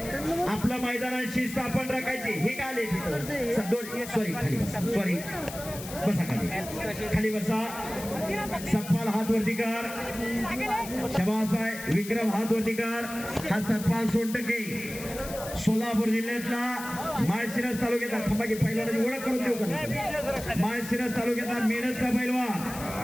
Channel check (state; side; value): noise; left; hiss, 12 dB below the sound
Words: आपलं मैदानात शिस्त आपण राखायची. हे काय आले तिथं सॉरी खाली बसा बसा खाली बसा. सतपाल हात वरती कर. शबास आहे विक्रम हात वरती कर. हा सतपाल सोनटके सोलापूर जिल्ह्यातला माळशिरस तालुक्यातला थांबा की पहिलवानाची ओळख करून देऊ का. माळशिरस तालुक्यातला मेडतचा